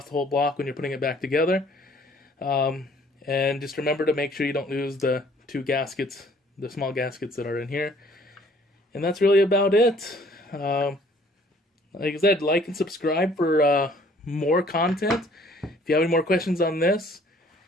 the whole block when you're putting it back together. And just remember to make sure you don't lose the two gaskets, the small gaskets that are in here. And that's really about it. Like I said, like and subscribe for more content. If you have any more questions on this,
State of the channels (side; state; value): both; normal; correlation 0.58